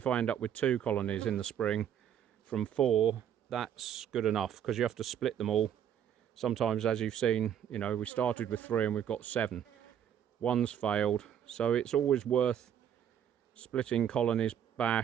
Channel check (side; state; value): left; quieter; 9.4 dB